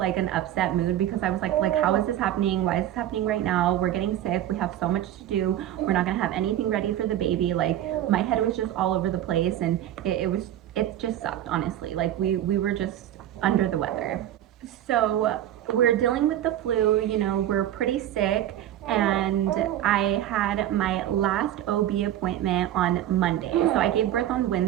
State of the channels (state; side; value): quieter; left; 12.0 dB